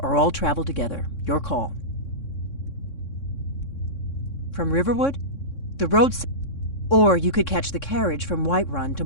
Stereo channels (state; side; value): late; right; 3.6 ms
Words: or all travel together. Your call. From Riverwood? The road's... Or you could catch the carriage from Whiterun to